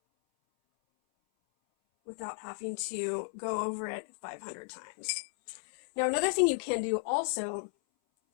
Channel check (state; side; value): silent; right; 55 dB below the other